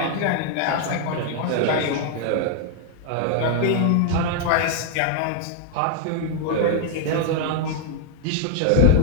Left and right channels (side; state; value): both; different; correlation 0.00